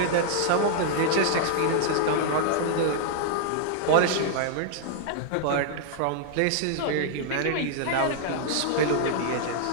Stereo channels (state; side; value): different; both; correlation -0.01